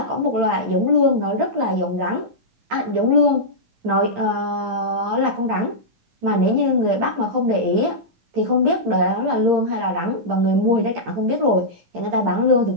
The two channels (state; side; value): late; left; 12 ms